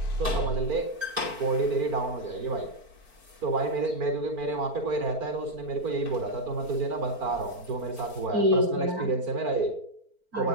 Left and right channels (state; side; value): late; left; 4.4 ms